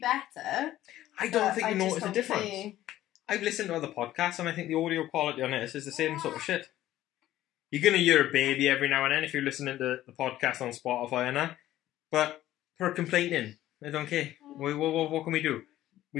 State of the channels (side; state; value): right; quieter; 14.0 dB